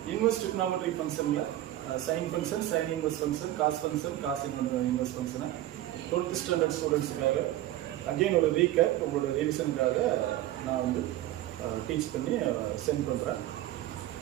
inverse trigonometry function sin function, sin inverse function, cos inverse function 12th standard students again ஒரு recap உங்களோட revisionக்காக நான் வந்து டீச் பண்ணி சென்ட் பண்றேன்.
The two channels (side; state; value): left; quieter; 14.3 dB